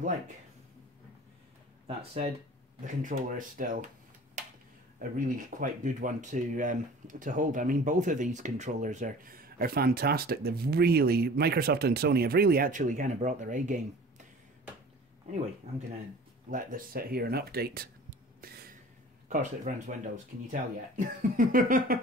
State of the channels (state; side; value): normal; both; correlation 0.44